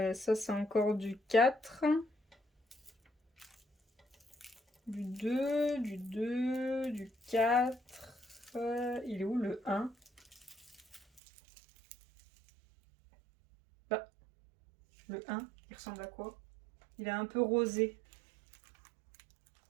Ça, c'est encore du 4. Du 2, du 2, du 4. Il est où le 1? Bah, le 1, il ressemble à quoi? Il est un peu rosé.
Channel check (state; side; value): drops out; left; at 11.2 s